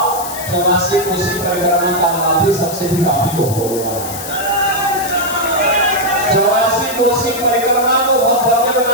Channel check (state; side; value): noise; left; hiss, 9 dB below the sound